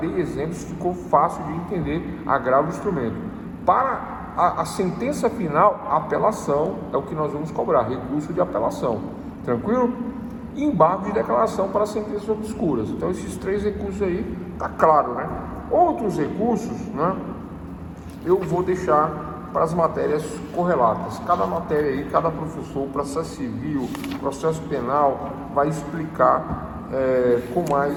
exemplos, ficou fácil de entender agravo de instrumento. Para a sentença final, a apelação é o que nós vamos cobrar, recurso de apelação. Tranquilo? E embargo de declaração para sentenças obscuras. Então, esses 3 recursos aí, tá claro, né? Outros recursos, né? Eu vou deixar para as matérias correlatas. Cada matéria aí, cada professor, processo civil, processo penal, vai explicar com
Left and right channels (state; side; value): identical; both; correlation 1.00